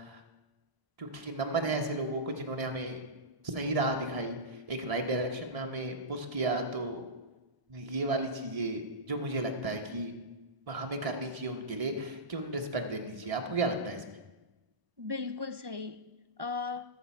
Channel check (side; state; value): left; late; 1.7 ms